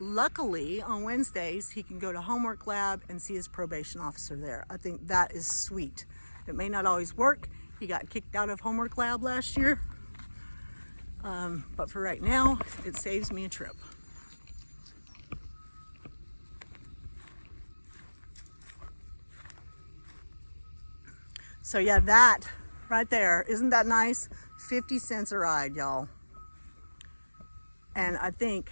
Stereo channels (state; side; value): inverted; both; correlation -1.00